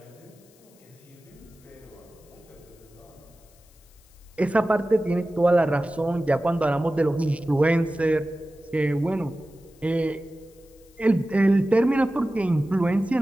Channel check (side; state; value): left; noise; hiss, 30 dB below the sound